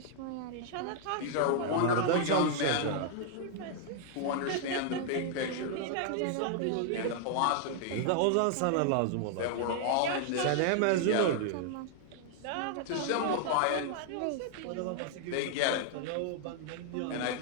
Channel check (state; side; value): different; both; correlation 0.00